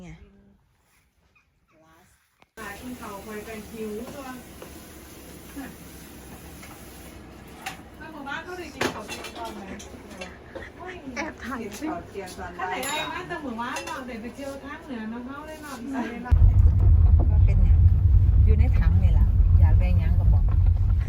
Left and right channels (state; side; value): identical; both; correlation 1.00